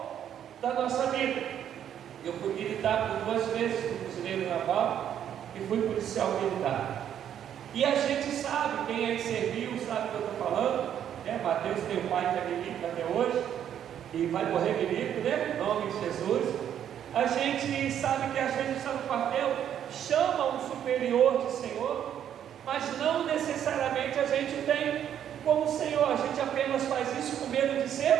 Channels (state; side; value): quieter; left; 9.8 dB